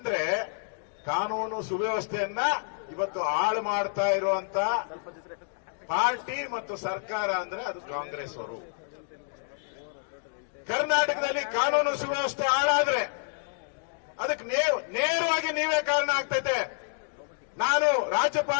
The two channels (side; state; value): right; silent; digital silence